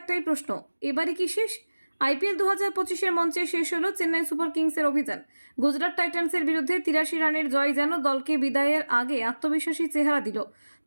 প্রশ্ন, এবারে কি শেষ? আইপিএল 2025-এর মঞ্চে শেষ হলো চেন্নাই সুপার কিংসের অভিযান। গুজরাট টাইটান্সের বিরুদ্ধে 83 রানের জয় যেন দলকে বিদায়ের আগে আত্মবিশ্বাসী চেহারা দিল।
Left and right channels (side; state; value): both; inverted; correlation -1.00